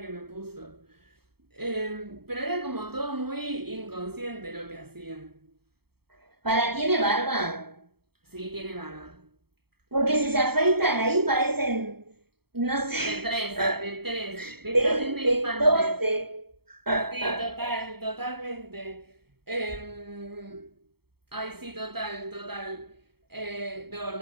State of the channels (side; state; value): left; late; 0.96 ms